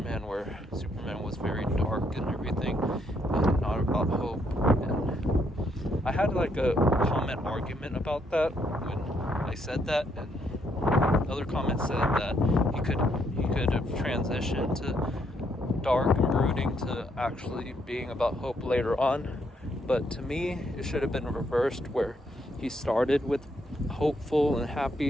where Superman was very dark and everything, and not about hope, and I had like a comment argument about that when I said that, and other comments said that he could have transitioned to dark and brooding to actually being about hope later on. But to me, it should have been reversed, where he started with hopeful and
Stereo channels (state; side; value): normal; both; correlation 0.73